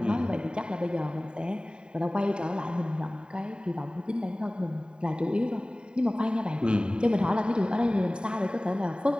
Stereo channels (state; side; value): late; left; 0.049 ms